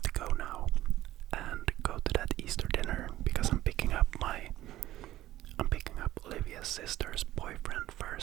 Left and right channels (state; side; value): quieter; left; 14.7 dB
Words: to go now and go to that Easter dinner, because I'm picking up Olivia's sister's boyfriend